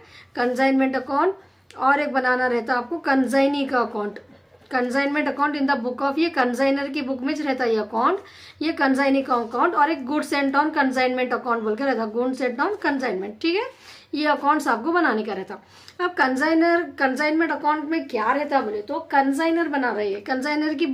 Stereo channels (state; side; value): identical; both; correlation 1.00